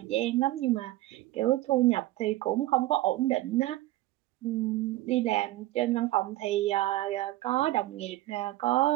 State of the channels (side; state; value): left; quieter; 16.7 dB